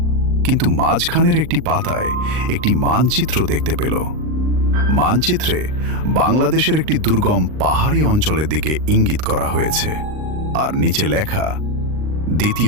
কিন্তু মাঝখানের একটি পাতায় একটি মানচিত্র দেখতে পেল। মানচিত্রে বাংলাদেশের একটি দুর্গম পাহাড়ি অঞ্চলের দিকে ইঙ্গিত করা হয়েছে, আর নিচে লেখা,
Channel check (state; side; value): late; left; 39 ms